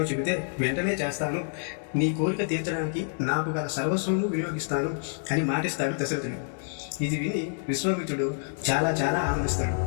చెబితే వెంటనే చేస్తాను. నీ కోరిక తీర్చడానికి నాకు గల సర్వస్వము వినియోగిస్తాను అని మాటిస్తాడు దశరథుడు. ఇది విని విశ్వామిత్రుడు చాలా చాలా ఆనందిస్తాడు.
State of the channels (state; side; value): silent; right; digital silence